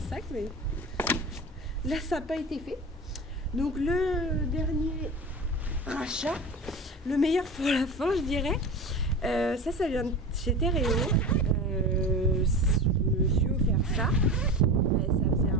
sac, mais là ça n'a pas été fait. Donc le dernier rachat, le meilleur pour la fin je dirais. Ça vient de chez Terreo. Je me suis offert ça.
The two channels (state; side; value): normal; both; correlation 0.30